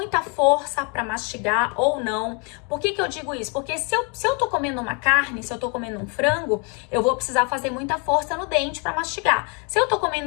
força para mastigar ou não. Por que eu digo isso? Porque se eu tô comendo uma carne, se eu tô comendo um frango, eu vou precisar fazer muita força no dente para mastigar. Se eu tô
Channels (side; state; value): right; quieter; 34.6 dB